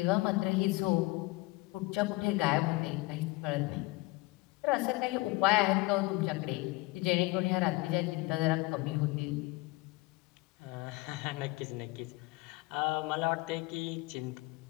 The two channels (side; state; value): right; quieter; 22.2 dB